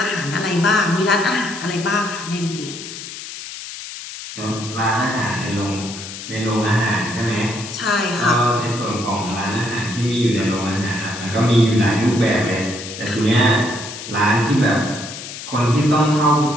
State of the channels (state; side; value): noise; left; hiss, 11 dB below the sound